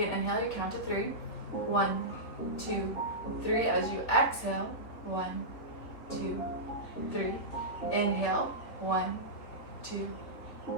an inhale, you count to 3. 1, 2, 3. As you exhale, 1, 2, 3. Inhale, 1, 2,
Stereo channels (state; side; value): late; right; 3.6 ms